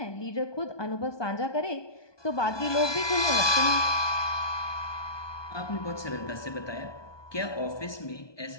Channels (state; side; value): late; right; 1.2 ms